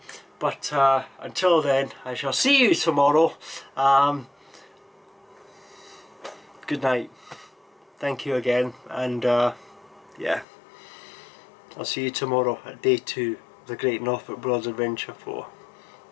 But until then, I shall see you tomorrow. Good night. Thank you again, and yeah, I'll see you tomorrow at day 2 of the Great Norfolk Broads Adventure 4.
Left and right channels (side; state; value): right; drops out; at 10.5 s